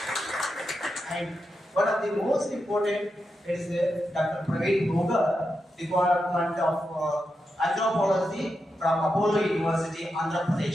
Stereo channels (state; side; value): normal; both; correlation 0.87